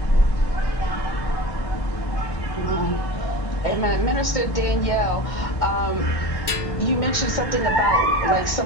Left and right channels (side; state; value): right; late; 1.8 ms